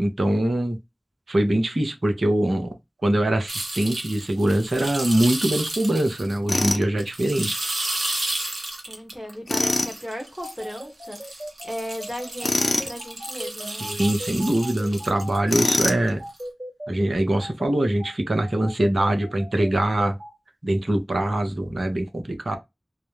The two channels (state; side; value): normal; both; correlation 0.96